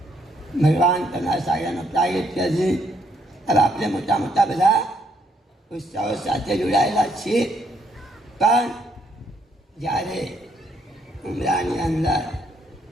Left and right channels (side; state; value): both; normal; correlation 0.72